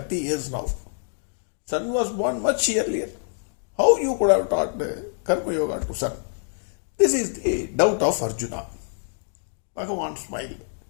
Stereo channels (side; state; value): right; silent; digital silence